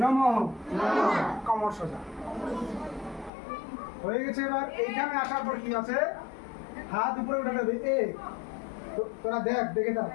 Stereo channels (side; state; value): right; drops out; at 3.3 s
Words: নমঃ কমর্ষজা হয়ে গেছে। এবার এইখানে আসার পর কি আছে, হাত উপরে উঠে দেবে। তোরা দেখে দেখ,